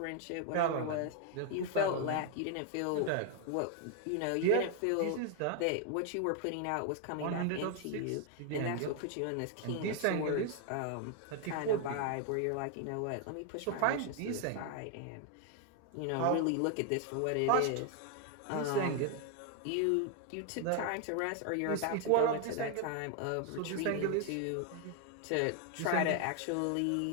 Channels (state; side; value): different; both; correlation 0.00